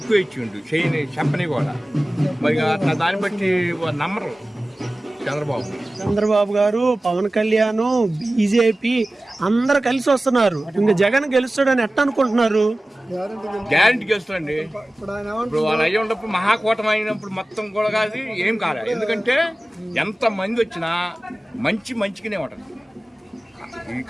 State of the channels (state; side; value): normal; both; correlation 0.97